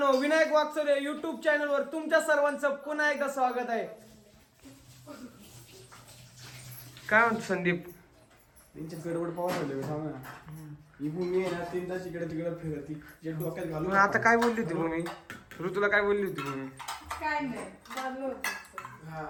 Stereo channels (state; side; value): identical; both; correlation 1.00